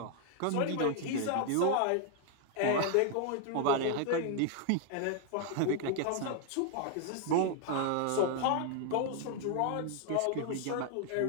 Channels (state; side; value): different; both; correlation 0.00